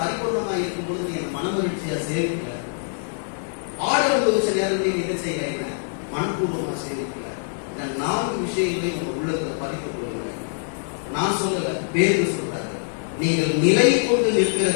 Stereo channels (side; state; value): right; silent; 63 dB below the other